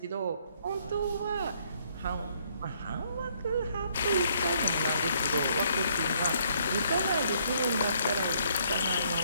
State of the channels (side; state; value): both; inverted; correlation -0.67